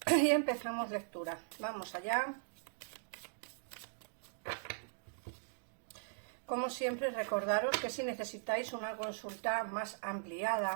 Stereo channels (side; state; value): left; silent; digital silence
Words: y empezamos lectura. Vamos allá. Como siempre, recordaros que si necesitáis una consulta más